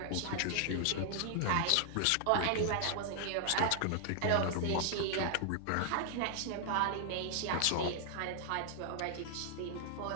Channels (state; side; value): different; both; correlation 0.00